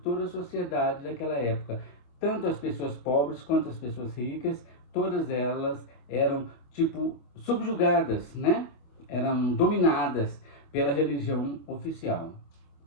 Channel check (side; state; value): right; late; 25 ms